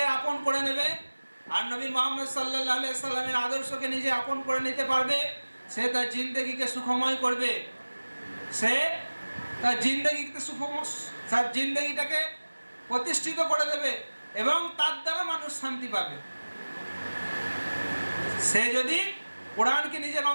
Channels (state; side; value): inverted; both; correlation -1.00